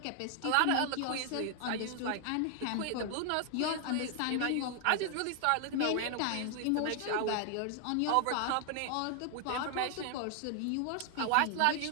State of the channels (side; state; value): both; different; correlation 0.00